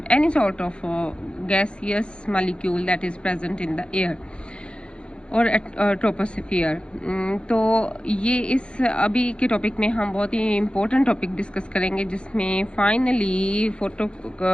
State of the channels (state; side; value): late; right; 0.056 ms